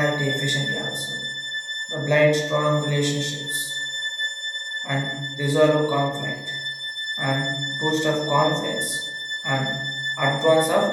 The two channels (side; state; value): both; identical; correlation 1.00